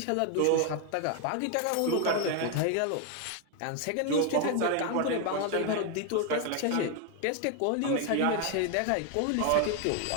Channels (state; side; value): different; both; correlation 0.01